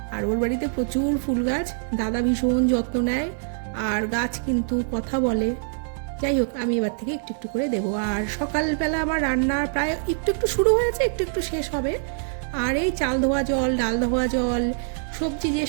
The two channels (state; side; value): silent; left; digital silence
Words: আর ওর বাড়িতে প্রচুর ফুল গাছ, দাদা ভীষণ যত্ন নেয় আর গাছ কিন্তু কথা বলে। যাই হোক, আমি এবার থেকে একটু একটু করে দেবো। আর সকালবেলা আমার রান্না প্রায় একটু শুরু হয়েছে, একটু শেষ হবে। আর এই চাল ধোয়া জল, ডাল ধোয়া জল, সবজি যে